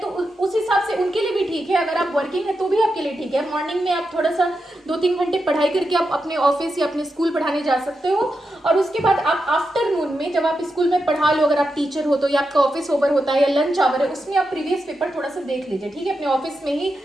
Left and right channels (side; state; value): both; normal; correlation 0.87